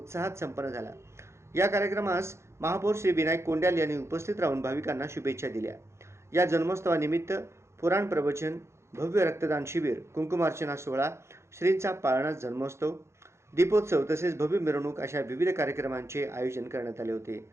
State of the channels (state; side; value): late; left; 0.13 ms